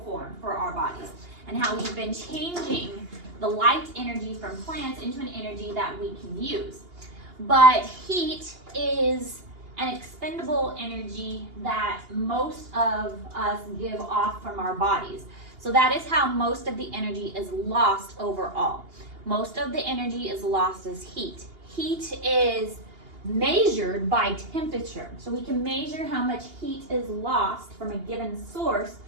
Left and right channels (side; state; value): left; late; 2.8 ms